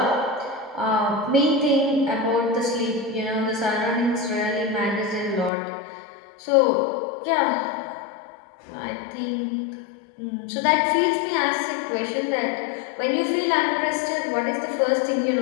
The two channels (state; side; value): drops out; right; at 5.5 s